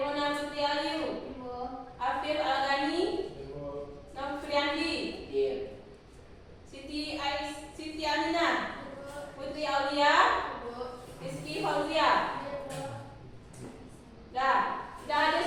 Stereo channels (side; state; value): both; identical; correlation 1.00